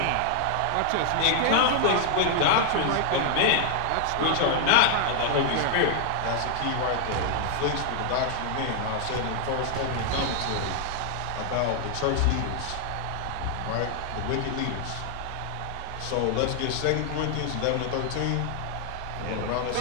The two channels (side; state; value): both; different; correlation 0.00